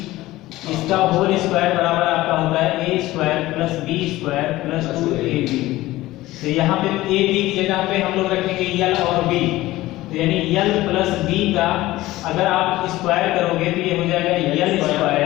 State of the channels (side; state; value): right; quieter; 17.2 dB